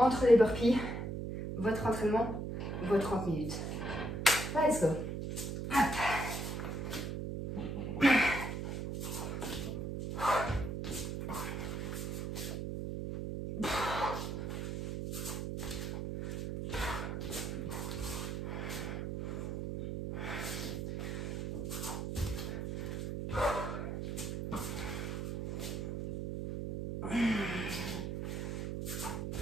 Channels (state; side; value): noise; right; hum, 4 dB below the sound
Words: les burpees, votre entraînement, vos 30 minutes. Let's go. Hop.